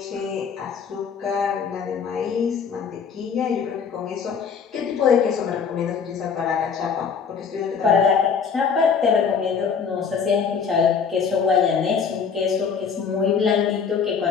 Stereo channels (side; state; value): right; quieter; 6.3 dB